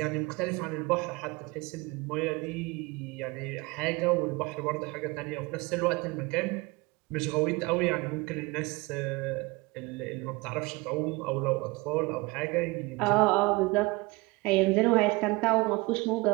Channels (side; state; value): left; quieter; 24.2 dB